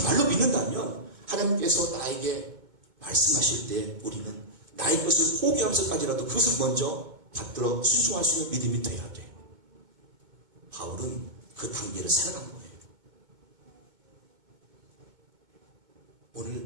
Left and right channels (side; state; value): left; late; 2.2 ms